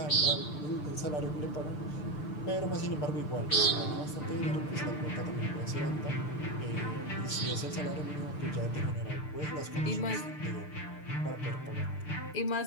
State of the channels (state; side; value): late; right; 6.8 ms